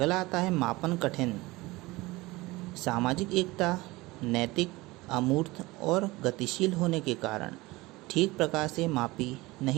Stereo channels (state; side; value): quieter; left; 21.0 dB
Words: आता है मापन कठिन। सामाजिक एकता नैतिक, अमूर्त और गतिशील होने के कारण ठीक प्रकार से मापी